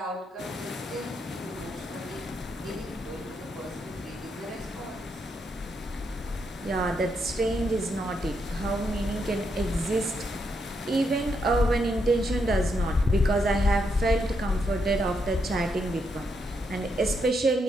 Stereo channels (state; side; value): normal; both; correlation 0.79